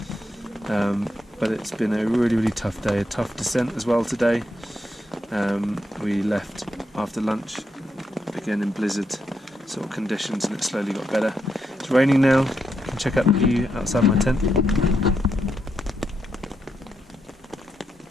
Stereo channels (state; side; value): normal; both; correlation 0.82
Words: But it's been a really, really tough day, a tough descent as well today. We left after lunch, again in blizzard sort of conditions, and it slowly got better. It's raining now. You can check out the view outside my tent.